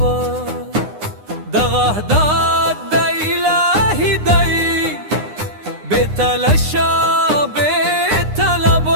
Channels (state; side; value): late; left; 9.7 ms